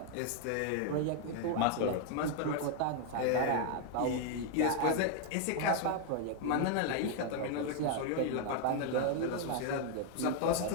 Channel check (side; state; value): both; different; correlation 0.00